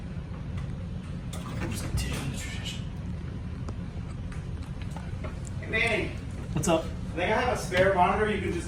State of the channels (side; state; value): both; identical; correlation 1.00